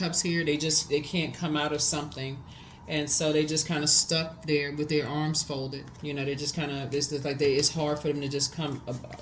here. They can't come out of something, and so they just kind of stuck there with their arms folded. You know, they just kind of it's just like it's hard for them to just come,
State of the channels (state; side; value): identical; both; correlation 1.00